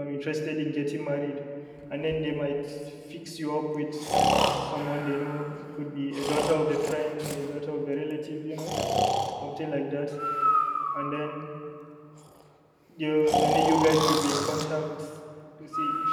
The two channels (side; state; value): both; identical; correlation 1.00